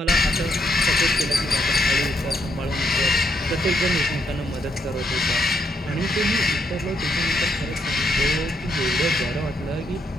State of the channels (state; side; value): normal; both; correlation 0.76